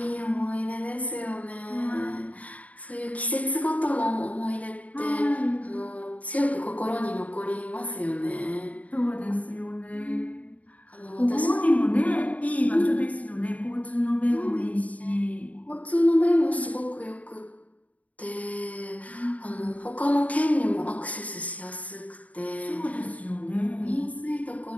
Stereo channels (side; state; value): right; late; 0.070 ms